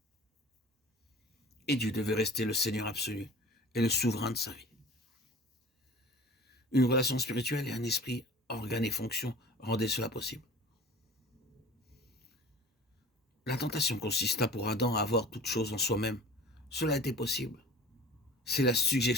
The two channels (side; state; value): both; normal; correlation 0.42